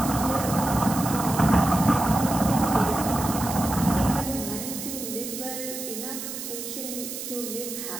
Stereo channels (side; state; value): right; noise; hiss, 7 dB below the sound